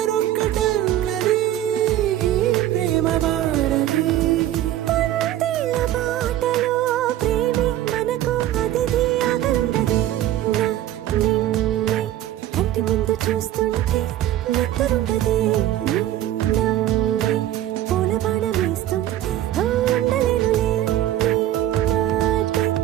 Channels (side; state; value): left; quieter; 13.1 dB